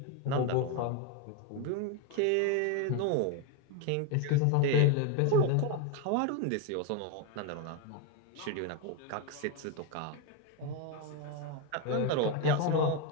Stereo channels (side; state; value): both; different; correlation 0.02